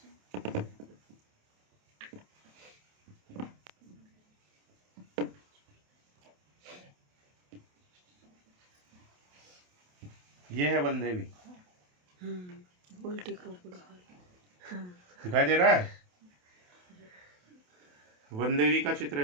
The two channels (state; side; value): late; left; 28 ms